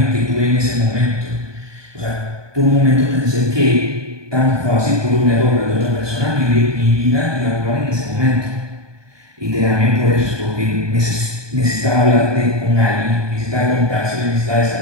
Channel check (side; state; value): left; late; 1.2 ms